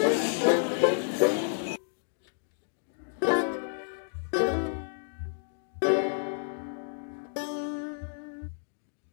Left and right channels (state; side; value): silent; right; digital silence